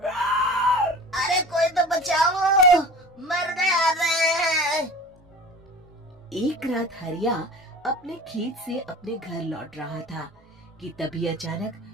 अरे कोई तो बचाओ, मर गया रे। एक रात हरिया अपने खेत से अपने घर लौट रहा था कि तभी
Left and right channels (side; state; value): both; normal; correlation 0.39